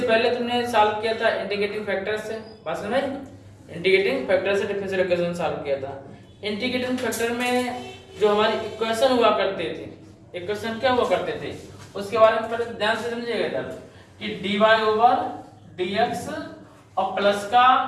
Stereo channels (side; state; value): both; identical; correlation 1.00